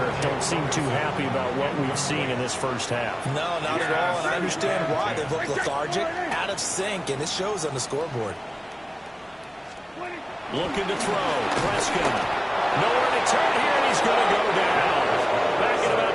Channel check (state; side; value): identical; both; correlation 1.00